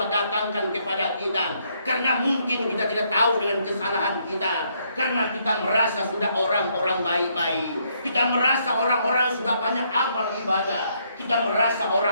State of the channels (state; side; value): inverted; both; correlation -0.72